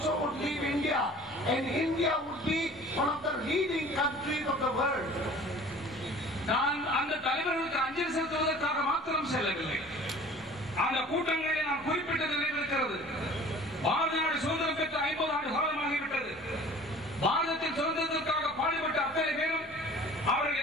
would leave India, and India would be one of the leading countries of the world. நான் அந்த தலைவர்களுக்கு அஞ்சலி செலுத்துவதற்காக மாத்திரம் செல்லவில்லை. அந்த கூட்டங்களில் நான் குறிப்பிட்ட நினைவிருக்கிறது. பாரத நாடு சுதந்திரம் பெற்ற 50 ஆண்டு காலமாகிவிட்டது. பாரதத்தின் சுதந்திரத்திற்காக பாடுபட்ட அத்தனை பேரும் அவர்கள்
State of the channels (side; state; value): both; normal; correlation 0.46